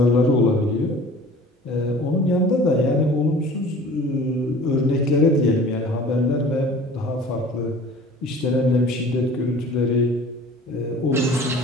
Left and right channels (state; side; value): normal; both; correlation 0.45